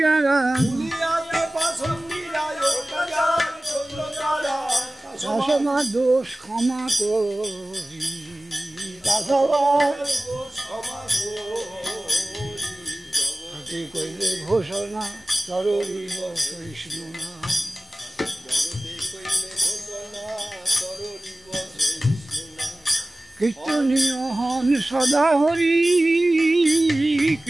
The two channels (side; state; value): both; normal; correlation 0.97